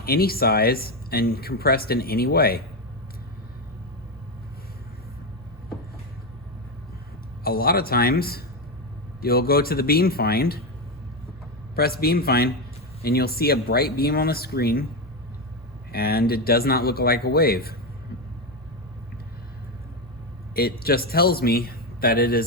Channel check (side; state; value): both; normal; correlation 0.11